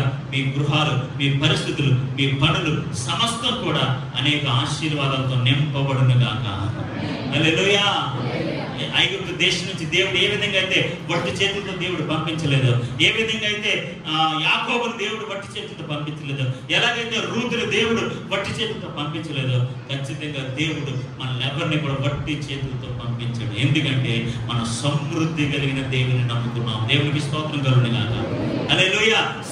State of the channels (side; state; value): both; identical; correlation 1.00